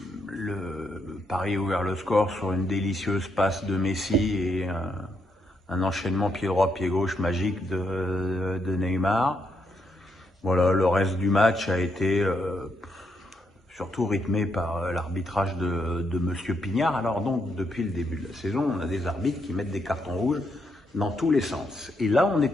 Le Paris a ouvert le score sur une délicieuse passe de Messi et un enchaînement pied droit, pied gauche magique de Neymar. Voilà, le reste du match a été surtout rythmé par l'arbitrage de Monsieur Pignard. Alors donc, depuis le début de la saison, on a des arbitres qui mettent des cartons rouges dans tous les sens. Et là, on est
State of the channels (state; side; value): normal; both; correlation 0.78